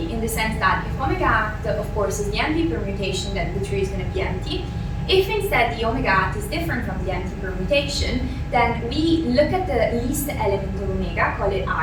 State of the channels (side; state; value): both; identical; correlation 1.00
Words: in the sense that if omega at, of course, is the empty permutation, then the tree is going to be empty. If instead the omega at is different from the empty permutation, then we look at the least element of omega, call it